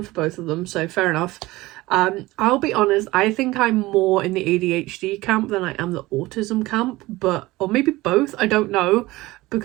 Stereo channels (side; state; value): left; quieter; 19.3 dB